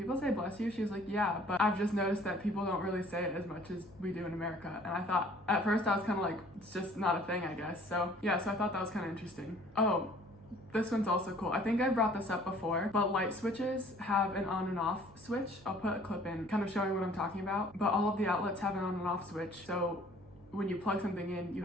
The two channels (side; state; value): right; noise; hum, 22 dB below the sound